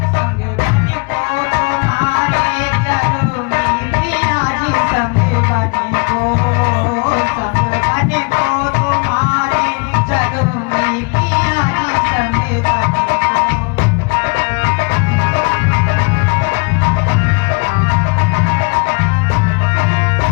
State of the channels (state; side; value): quieter; right; 32.0 dB